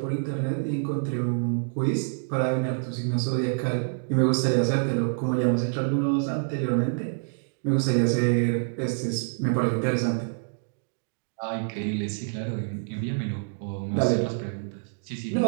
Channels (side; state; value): left; silent; digital silence